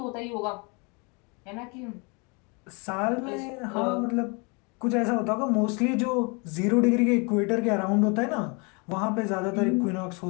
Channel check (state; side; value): quieter; right; 31.5 dB